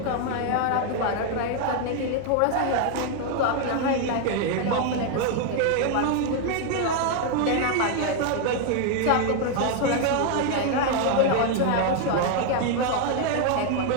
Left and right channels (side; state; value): both; different; correlation 0.01